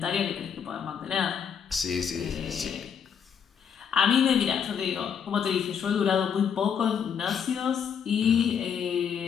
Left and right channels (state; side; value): quieter; right; 7.5 dB